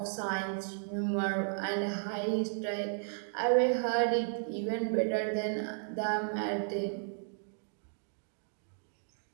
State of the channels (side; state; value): left; silent; digital silence